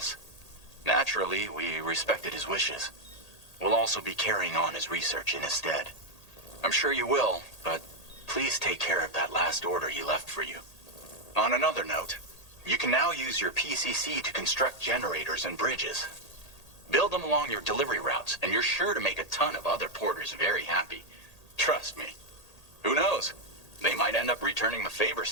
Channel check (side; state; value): right; late; 1.8 ms